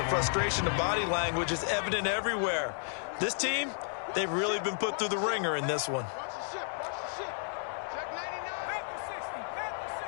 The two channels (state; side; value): silent; right; digital silence